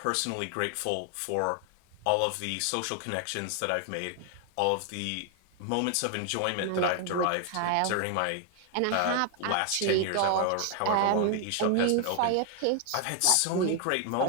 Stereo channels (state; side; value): different; both; correlation 0.00